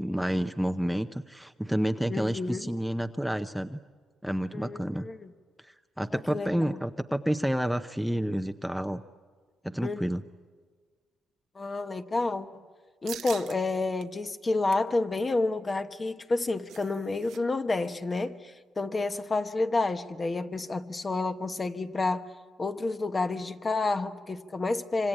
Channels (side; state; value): both; normal; correlation 0.95